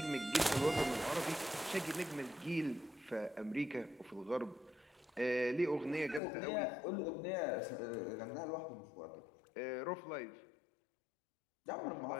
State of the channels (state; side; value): drops out; right; at 6.2 s